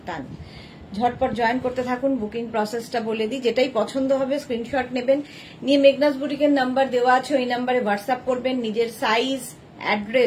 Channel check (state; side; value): identical; both; correlation 1.00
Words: ঝটপট জয়েন করতে থাকুন। বুকিং প্রসেসটা বলে দিই, যেটাই পছন্দ হবে স্ক্রিনশট নেবেন, নিয়ে মেঘনাস বুটিকের নাম্বার দেওয়া আছে, ওই নাম্বারে হোয়াটসঅ্যাপ করবেন নিজের সাইজ,